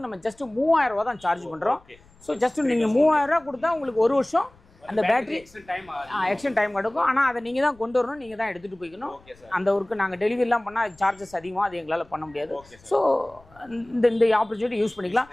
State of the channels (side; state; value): left; noise; rumble, 28 dB below the sound